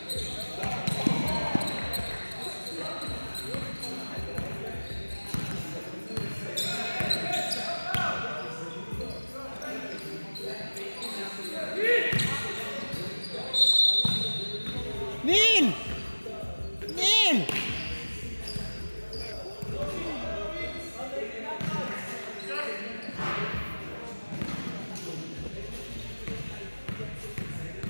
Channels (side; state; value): both; inverted; correlation -1.00